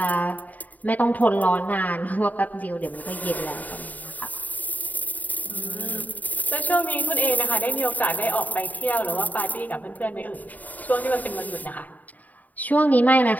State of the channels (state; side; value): late; right; 0.078 ms